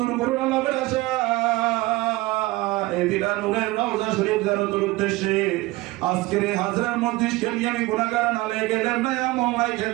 করুণা লাভের আশা এদিনা নূরের রওজা শরীফ জিয়ারতের উদ্দেশ্যে আজকের এই হাজরার মসজিদকে নিয়ে আমি গুনাহগার নালেকের নয়া মোহলাই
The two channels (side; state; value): left; quieter; 20.3 dB